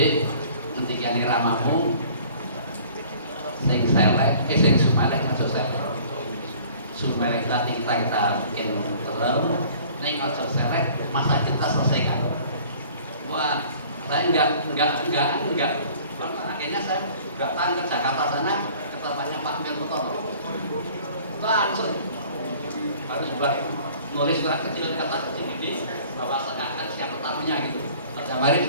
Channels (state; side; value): inverted; both; correlation -0.51